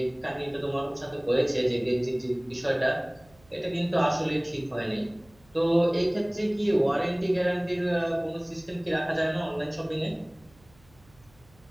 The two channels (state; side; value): noise; right; hum, 29 dB below the sound